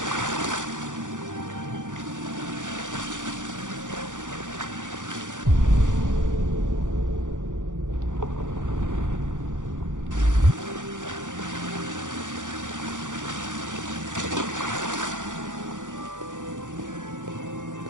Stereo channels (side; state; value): left; late; 0.87 ms